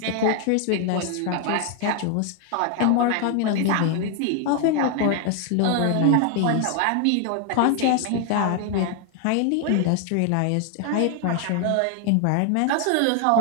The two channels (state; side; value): different; both; correlation 0.00